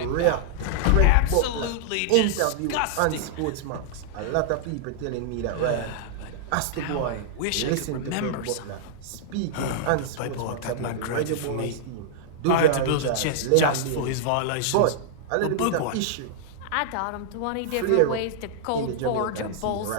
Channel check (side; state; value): both; different; correlation -0.01